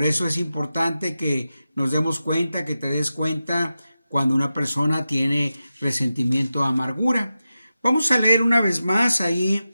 eso es importante que nos demos cuenta, que te des cuenta cuando una persona tiene resentimiento o amargura. Vamos a leer una vez más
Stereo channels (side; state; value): both; inverted; correlation -0.92